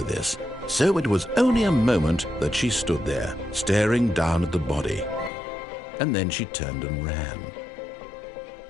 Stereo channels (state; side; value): drops out; right; at 5.3 s